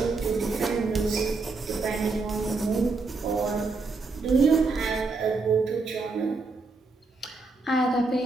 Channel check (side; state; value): left; quieter; 3.8 dB